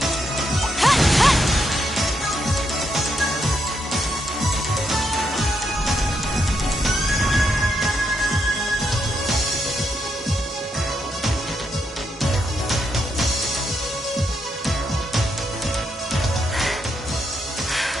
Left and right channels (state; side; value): normal; both; correlation 0.80